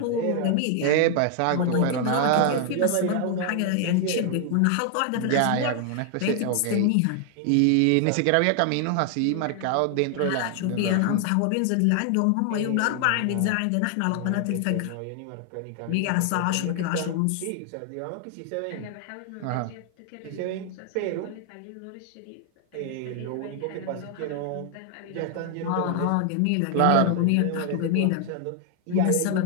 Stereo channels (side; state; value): both; different; correlation 0.00